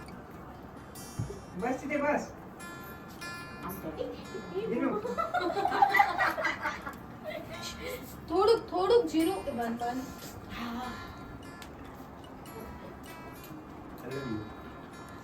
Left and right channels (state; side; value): identical; both; correlation 1.00